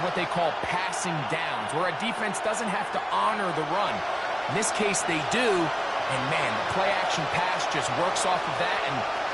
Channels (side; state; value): both; identical; correlation 1.00